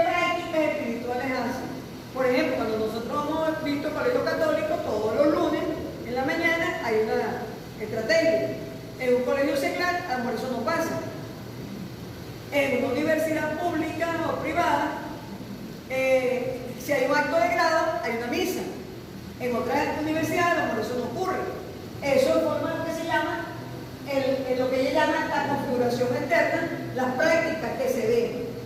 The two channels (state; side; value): identical; both; correlation 1.00